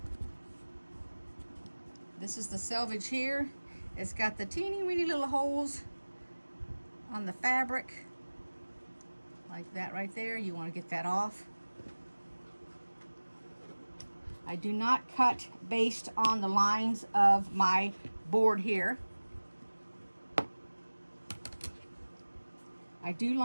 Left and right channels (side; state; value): both; inverted; correlation -1.00